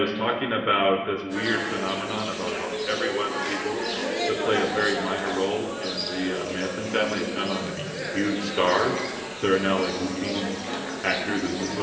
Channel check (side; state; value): both; identical; correlation 1.00